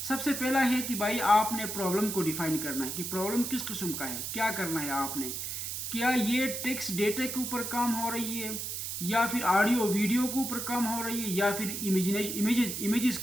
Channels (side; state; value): right; noise; hiss, 4 dB below the sound